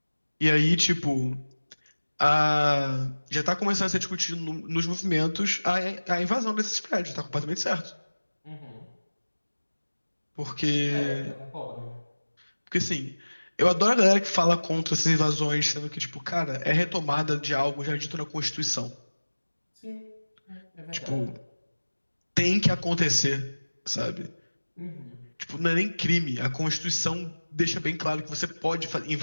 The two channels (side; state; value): both; inverted; correlation -1.00